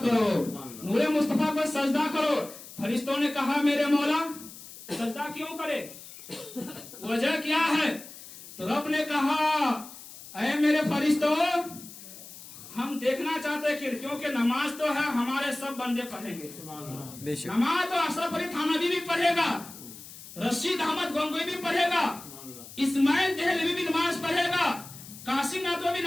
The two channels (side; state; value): left; noise; hiss, 16 dB below the sound